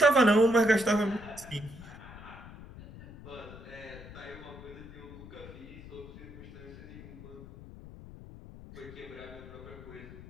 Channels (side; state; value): left; noise; rumble, 15 dB below the sound